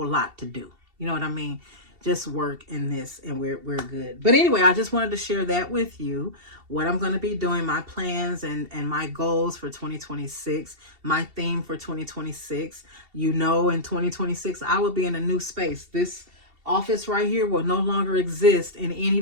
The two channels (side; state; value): left; late; 2.7 ms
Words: lot to do. You know what I mean? Just work in this, and we're good. But anyway, I just wanted to share that with you, what I'm going to be doing, my plans and my goals for 2026, my theme for 2026. You know, in 2026, I will be in a new space. This office right here will no longer exist in any